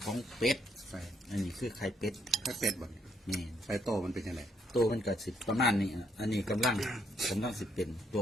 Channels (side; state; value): both; normal; correlation 0.72